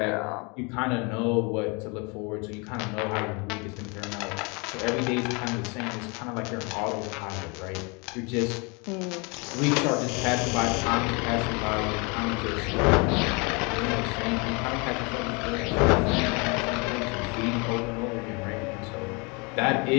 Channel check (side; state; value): right; quieter; 30.4 dB